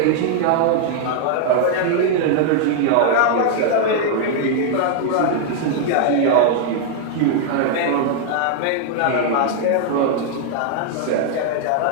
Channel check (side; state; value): both; different; correlation 0.00